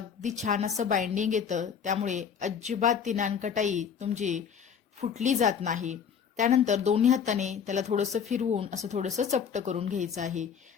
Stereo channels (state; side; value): quieter; right; 7.2 dB